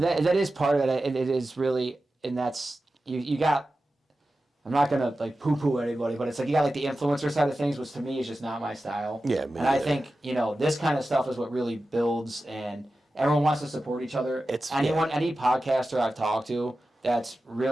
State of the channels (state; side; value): normal; both; correlation 0.93